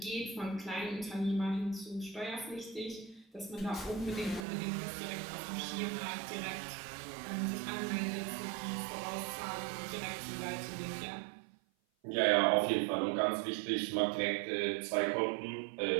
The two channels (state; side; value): drops out; left; at 4.5 s